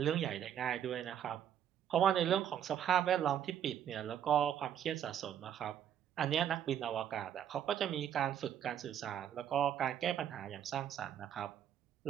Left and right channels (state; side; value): quieter; left; 9.8 dB